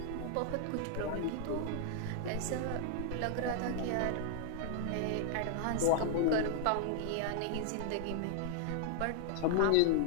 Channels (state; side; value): different; both; correlation 0.00